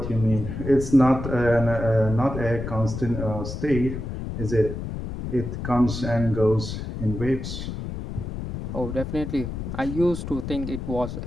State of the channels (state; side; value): noise; left; rumble, 6 dB below the sound